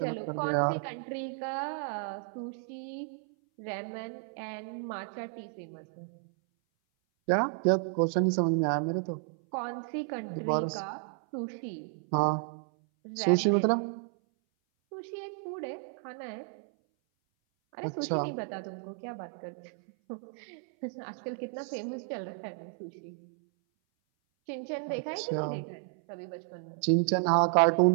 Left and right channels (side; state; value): left; silent; 56 dB below the other